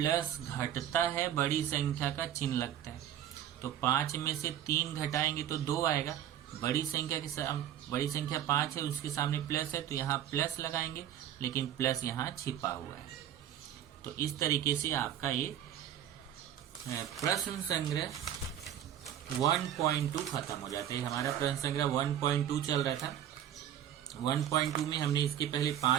घटता है, बड़ी संख्या का चिन्ह लगता है। तो 5 में से 3 घटाएंगे तो 2 आएगा। बड़ी संख्या 5 है, उसके सामने प्लस है, तो यहाँ प्लस लगाएंगे, लेकिन प्लस यहाँ छिपा हुआ है। तो इस तरीके से आपका ये प्रश्न संग्रह 1.2 खत्म हो जाता है। हमारा प्रश्न संग्रह 1.2 चल रहा था। 1.2 में हमने इसके पहले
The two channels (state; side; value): quieter; left; 10.8 dB